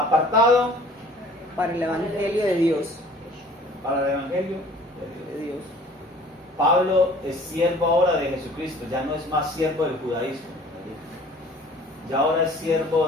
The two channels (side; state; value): both; normal; correlation 0.50